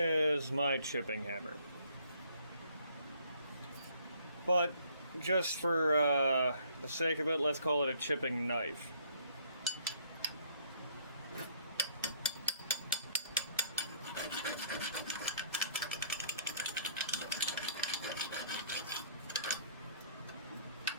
my chipping hammer. But just for the sake of it, let's call it a chipping knife.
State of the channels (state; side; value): inverted; both; correlation -0.62